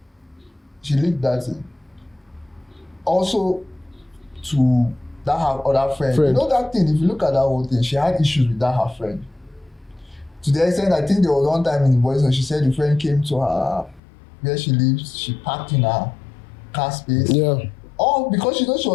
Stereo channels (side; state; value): right; drops out; at 14.0 s